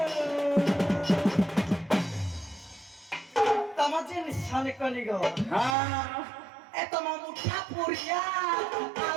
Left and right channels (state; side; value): drops out; left; at 5.8 s